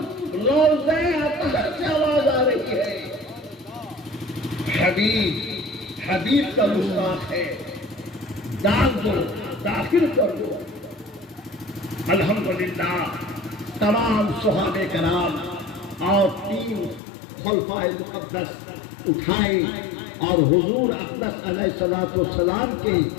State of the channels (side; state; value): right; drops out; at 17.0 s